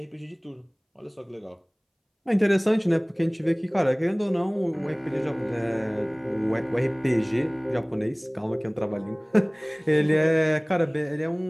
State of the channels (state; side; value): identical; both; correlation 1.00